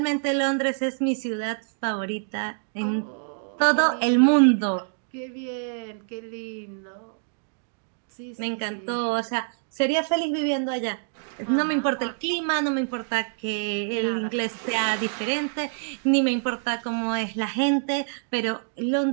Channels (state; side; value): silent; left; digital silence